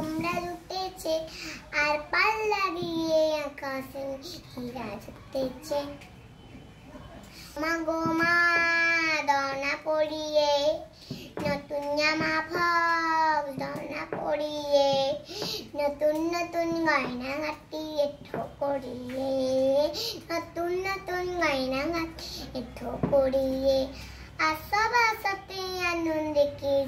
জুটেছে, আর পাল্লা দিয়ে আকাশে হীরা জুটেছে। মা গো মা দনা পড়িয়ে, নতুন জামা ফক দনা পড়িয়ে, নতুন নতুন গয়না গাঁটিয়ে ঠোকরিয়ে, নতুন নতুন গয়না গাঁটিয়ে ঠোকরিয়ে, আসব আসতে আনন্দে কে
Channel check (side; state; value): both; identical; correlation 1.00